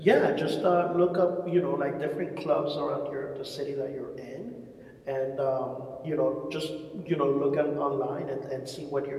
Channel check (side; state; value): both; identical; correlation 1.00